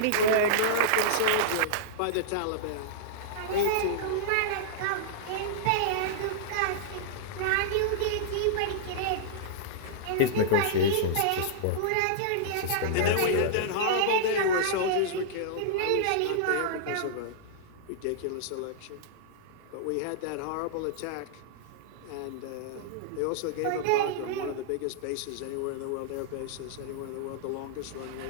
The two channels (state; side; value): different; both; correlation -0.02